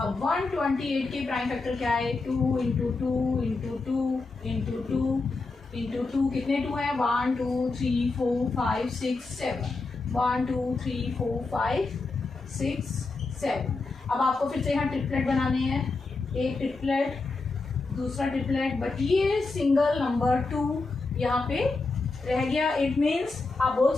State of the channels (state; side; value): quieter; right; 3.7 dB